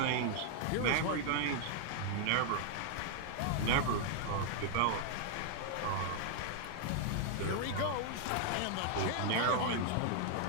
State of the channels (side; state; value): both; different; correlation 0.00